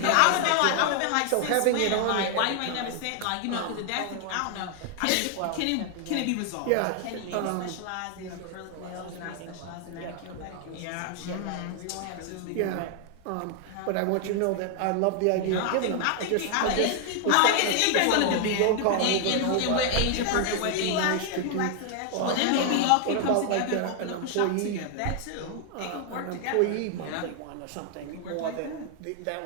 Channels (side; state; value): both; different; correlation 0.00